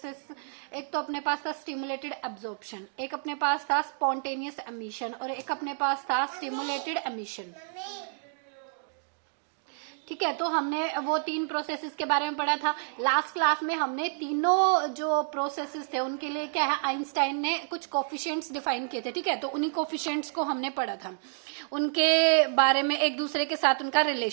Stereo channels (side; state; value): left; silent; digital silence